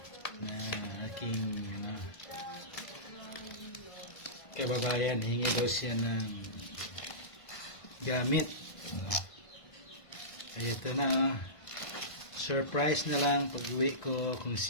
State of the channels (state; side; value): late; right; 1.5 ms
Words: na aking kababayan, hingi daw siya ng gamit. Ay ito na, surprise na lang pag uwi ko kung